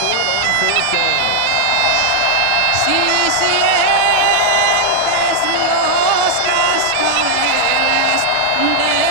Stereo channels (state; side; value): different; both; correlation 0.00